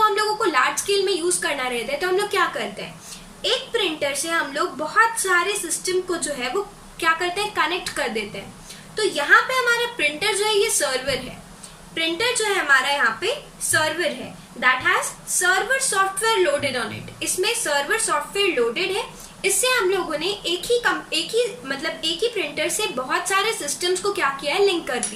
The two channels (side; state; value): both; identical; correlation 1.00